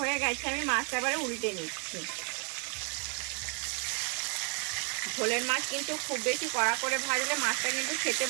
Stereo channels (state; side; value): quieter; left; 36.6 dB